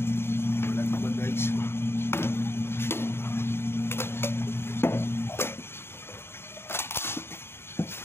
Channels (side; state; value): right; late; 0.11 ms